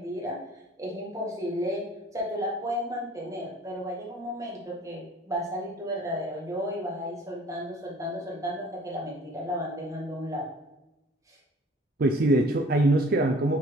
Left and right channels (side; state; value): both; normal; correlation 0.51